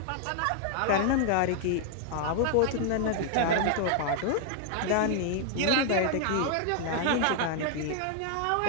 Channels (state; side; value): different; both; correlation 0.00